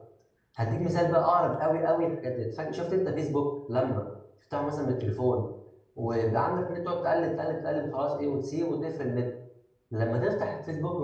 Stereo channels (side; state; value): both; identical; correlation 1.00